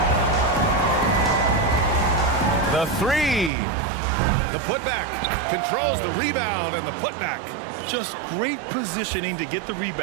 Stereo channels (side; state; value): left; drops out; at 3.5 s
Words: The 3. The putback. Controls the rebound and the putback. Just great positioning to get the